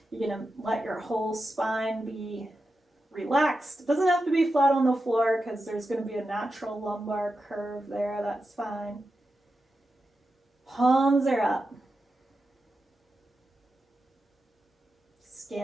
You're going to let your whole spine be relaxed. It doesn't have to be flat on the floor because there's going to be a natural lumbar curve there. That's fine. Palms are up.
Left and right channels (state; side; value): normal; both; correlation 0.90